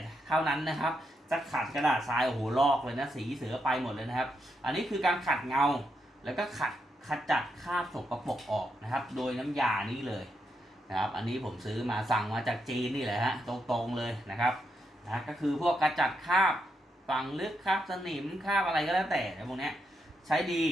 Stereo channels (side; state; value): both; normal; correlation 0.82